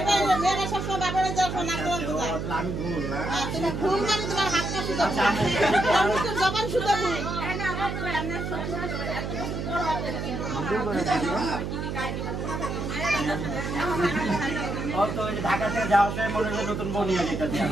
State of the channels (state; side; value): noise; right; hum, 4 dB below the sound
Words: সবসময় বাপের নাক গলা সোজা। আমি ভুল না হ্যাঁ, তুমি ভুল মানে তোমার হাতটা সোজা ভুল। তোমার জবান সোজা ভুল। ও তো ওই ঢাকা থেকে যাওয়ার সময় মনে হয় নতুন বউ নিয়ে যেতে চাই।